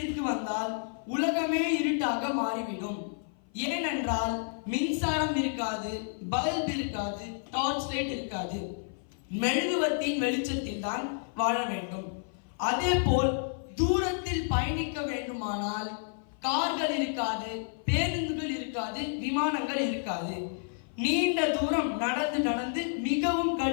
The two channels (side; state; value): right; silent; 55 dB below the other